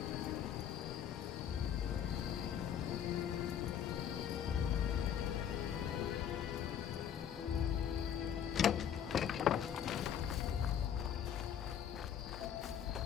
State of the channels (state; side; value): quieter; right; 9.0 dB